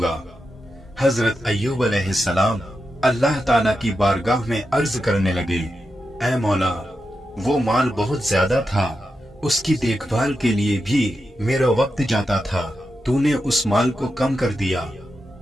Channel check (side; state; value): both; normal; correlation 0.88